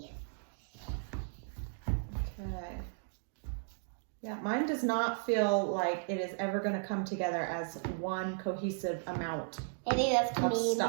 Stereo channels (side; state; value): left; silent; digital silence